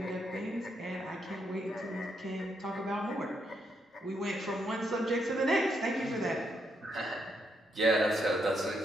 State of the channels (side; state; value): both; normal; correlation 0.78